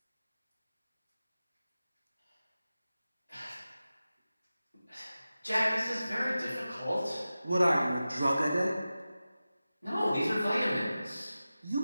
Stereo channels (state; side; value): inverted; both; correlation -0.95